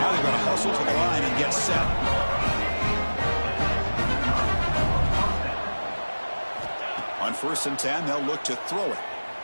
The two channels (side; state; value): both; inverted; correlation -1.00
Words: they've got to hustle to the line and get set. On 1st and 10, they'll look to throw it.